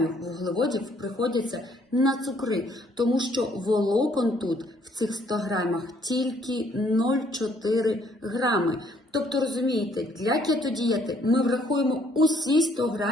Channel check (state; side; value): normal; both; correlation 0.65